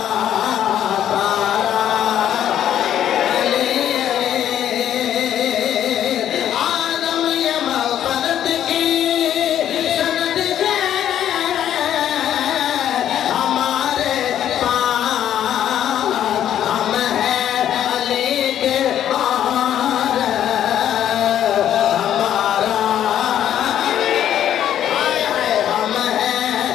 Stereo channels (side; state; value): right; quieter; 10.7 dB